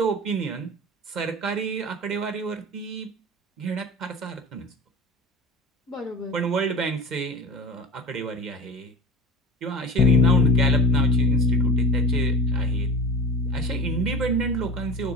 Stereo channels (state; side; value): normal; both; correlation 0.31